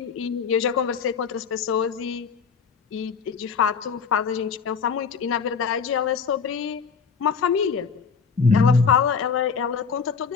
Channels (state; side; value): quieter; right; 5.9 dB